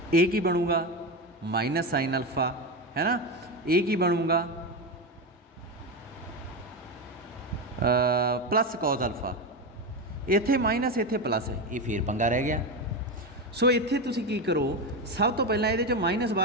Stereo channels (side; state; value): both; normal; correlation 0.16